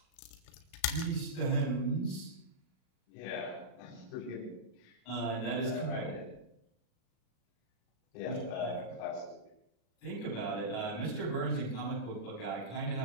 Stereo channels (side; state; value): right; late; 37 ms